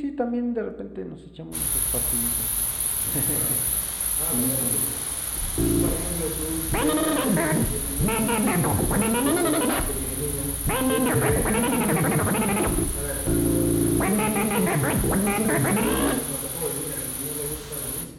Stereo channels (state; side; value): identical; both; correlation 1.00